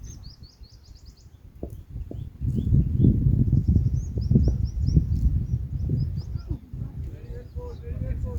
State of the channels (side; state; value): both; identical; correlation 1.00